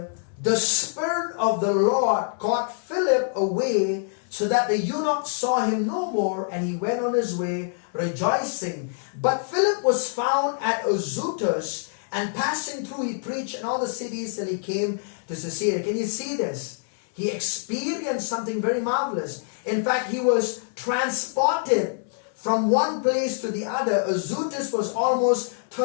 the Spirit of the Lord caught Philip away, so that the eunuch saw him no more, and he went on his way rejoicing. But Philip was found at Azotus, and passing through he preached in all the cities till he came to Caesarea. Can you see this? He experienced something very marvelous. In fact, he was transported from one place to the other. Azotus was almost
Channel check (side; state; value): right; silent; 62 dB below the other